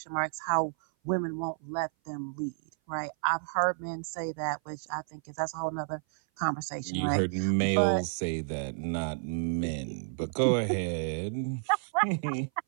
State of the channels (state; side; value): silent; left; 56 dB below the other